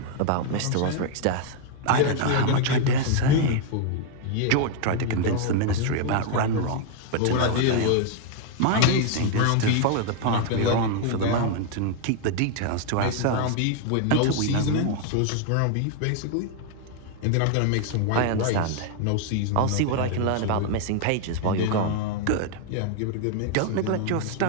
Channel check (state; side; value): different; both; correlation 0.00